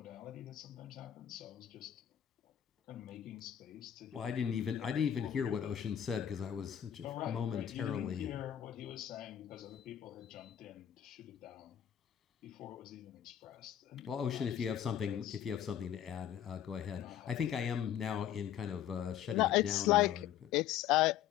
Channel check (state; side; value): quieter; right; 10.5 dB